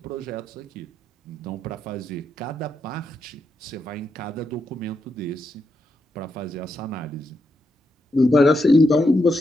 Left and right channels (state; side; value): normal; both; correlation 0.83